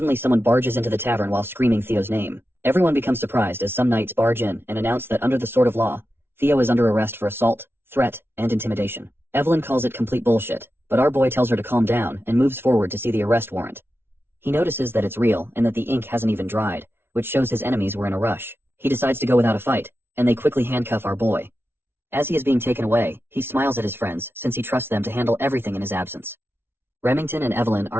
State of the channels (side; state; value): left; late; 0.11 ms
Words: someone barges into the tavern while screaming Theo's name. Everyone becomes surprised as some knights barge in and announce that under the sword of law, Theo is under arrest for assault, threat, and intimidation. Evelyn calls it complete bullshit, but our boy tells her to calm down and moves forward to see the arrest warrant. He notices that it's real and that the ink hasn't even dried, which shows his enemies were in a rush. He decides to go without a fight, and they quickly handcuff our boy. As he is being taken away, he smiles at his friends since he trusts them to handle everything in his absence. Remington and Evelyn are